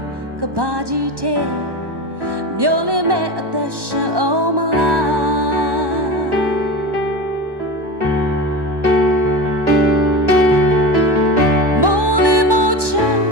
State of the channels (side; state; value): left; late; 1.1 ms